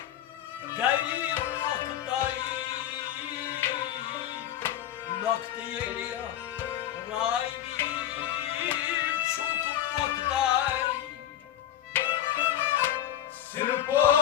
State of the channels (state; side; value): quieter; right; 11.6 dB